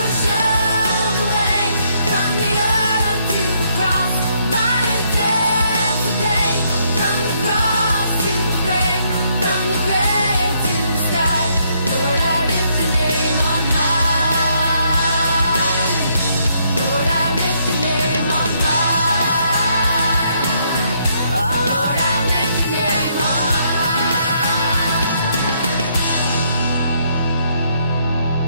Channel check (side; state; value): both; inverted; correlation -0.71